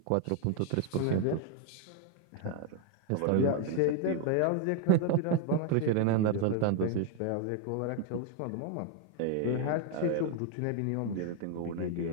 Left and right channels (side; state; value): both; different; correlation 0.01